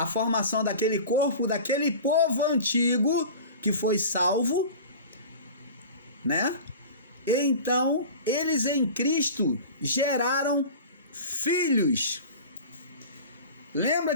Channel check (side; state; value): both; inverted; correlation -0.37